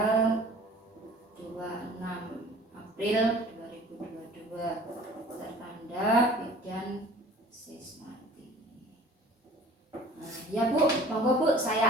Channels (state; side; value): normal; both; correlation 0.47